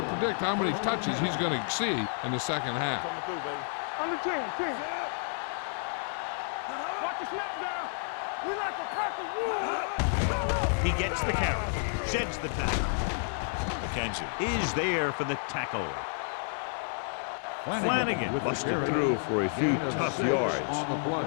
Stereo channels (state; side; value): silent; right; digital silence